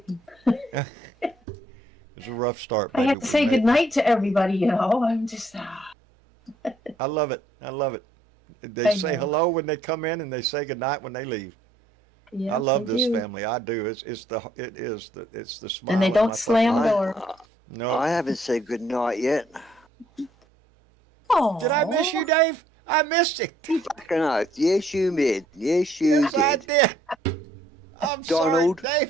It's a rough start, I baby. had to say goodnight to everybody, I'm just, I love it. They I say know. hello when they come in, and they say goodnight when they leave. yeah. I love they this do. family. I do. It's the smile. And they on don't my slam fucking- the door. No. I haven't said good night yet. Oh, Did I miss you, Dave? I missed it. Fucking oath. Yes, you did. Yes, you Yes, I did. did. I'm Donald, sorry,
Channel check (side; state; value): both; normal; correlation 0.66